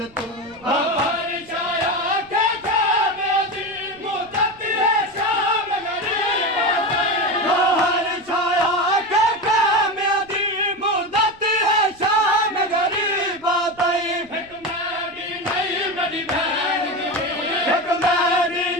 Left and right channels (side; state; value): right; noise; rumble, 27 dB below the sound